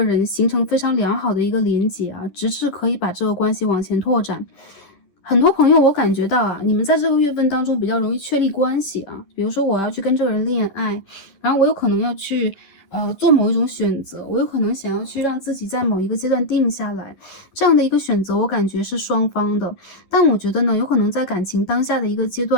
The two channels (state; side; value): late; right; 10 ms